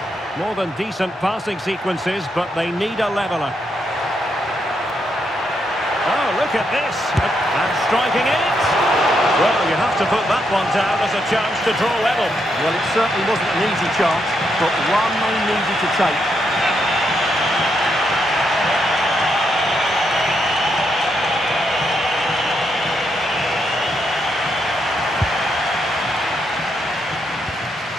More than decent passing sequences, but they need a leveller. Oh, look at this. And striking it. Well, you have to put that one down as a chance to draw level. Well, it certainly wasn't an easy chance, but one they needed to take.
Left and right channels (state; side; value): normal; both; correlation 0.79